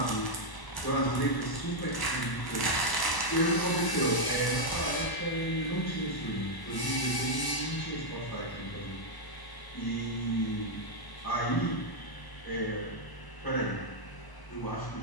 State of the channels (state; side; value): late; right; 1.0 ms